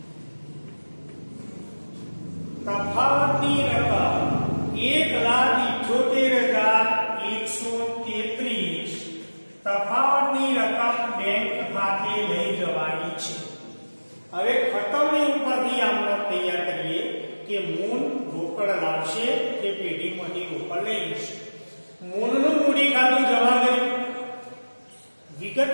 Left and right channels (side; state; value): both; inverted; correlation -1.00